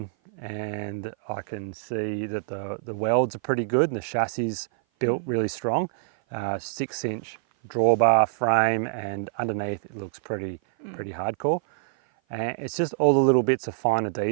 and I can see that the welds are pretty good and the chassis built really strong. 6-inch drawbar frame, and underneath it looks pretty hardcore. And it's just all the little bits of finer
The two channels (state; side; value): silent; left; 56 dB below the other